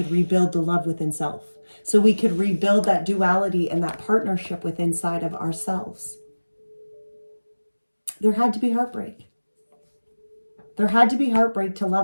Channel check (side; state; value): both; inverted; correlation -1.00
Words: rebuild the love within self. So we could rebuild that duality and that partnership within inside of ourselves. There had to be heartbreak. There had to be heartbreak to